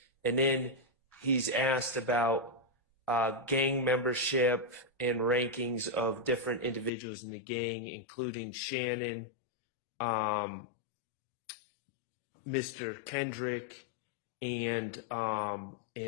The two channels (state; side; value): drops out; right; at 6.9 s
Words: and then he's asked about gang membership and rankings of different individuals in the gang, including Shannon, Mr. Kendrick, and